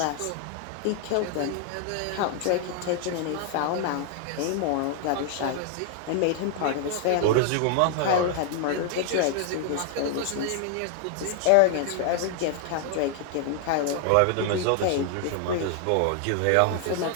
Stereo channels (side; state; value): both; different; correlation 0.00